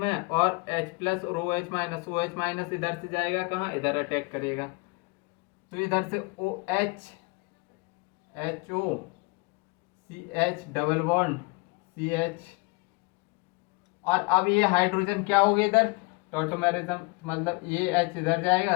और H+ और OH- इधर से जाएगा कहाँ, इधर अटैक करेगा, तो इधर से OH HO CH double bond CH, और अब ये हाइड्रोजन क्या हो गया इधर, टॉटोमेरिज्म, मतलब ये H इधर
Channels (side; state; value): right; quieter; 28.1 dB